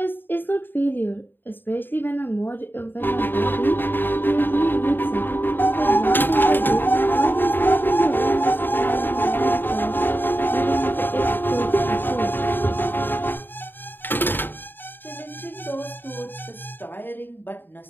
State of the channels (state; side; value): late; right; 0.095 ms